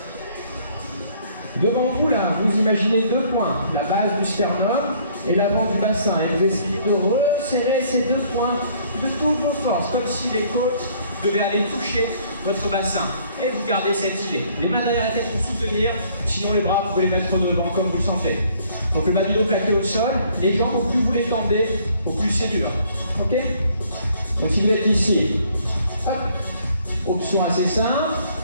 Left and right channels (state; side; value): inverted; both; correlation -0.61